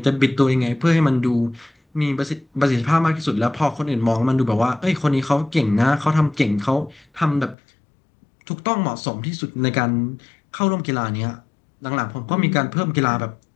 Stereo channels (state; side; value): drops out; right; at 7.6 s